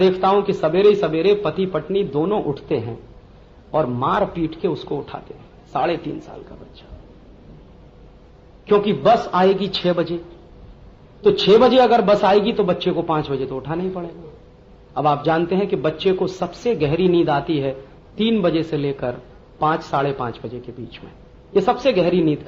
हूं कि सवेरे ही सवेरे पति पत्नी दोनों उठते हैं और मार पीट के उसको उठाते हैं, 3.5 साल का बच्चा। क्योंकि बस आएगी 6 बजे, तो 6 बजे अगर बस आएगी तो बच्चे को 5 बजे तो उठाना ही पड़ेगा। अब आप जानते हैं कि बच्चे को सबसे गहरी नींद आती है 3 बजे से लेकर 5, 5:30 बजे के बीच में। ये सबसे गहरी नींद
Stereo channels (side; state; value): both; identical; correlation 1.00